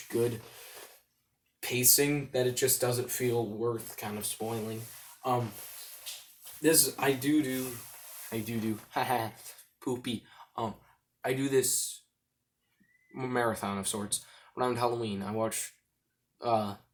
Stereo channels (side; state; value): both; identical; correlation 1.00